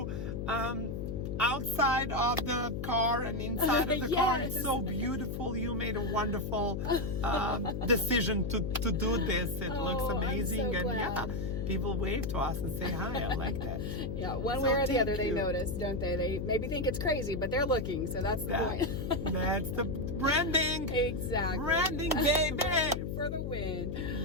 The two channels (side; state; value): left; noise; hum, 4 dB below the sound